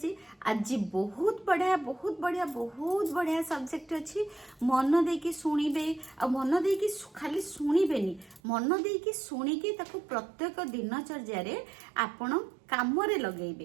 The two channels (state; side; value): drops out; left; at 8.4 s